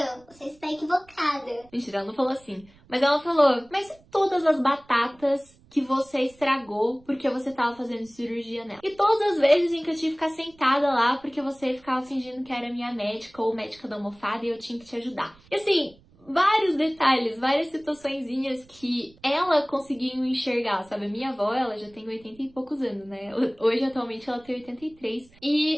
você está equivocada. Mentira, ela não falou assim. Mas ela falou, mas e todas as batatas que você estragou porque você tava fazendo cirurgia nela? E todas as vezes em que eu tive que ficar sentada lá porque você ficava fingindo que era minha médica ou médica da almofada e eu tinha que te ajudar. E assim, vários detalhes, várias situaçõezinhas que ela conseguiu enxergar, sabe? A minha avó, ela já tem 80 e poucos anos, né? Hoje, atualmente, ela tem 83.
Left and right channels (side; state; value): right; noise; rumble, 28 dB below the sound